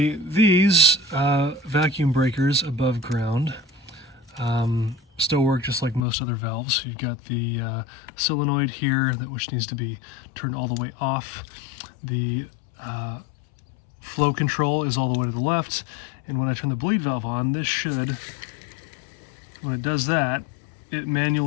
these vacuum breakers above ground still work just like most other valves. You've got the solenoid here, which needs to be turned all the way off. The flow control is all the way to the left, and when I turn the bleed valve on, this should, when it does that, it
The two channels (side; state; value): right; drops out; at 6.1 s